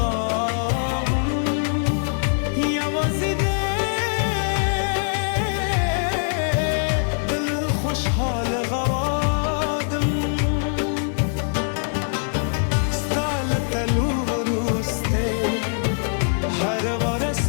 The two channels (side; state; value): right; silent; digital silence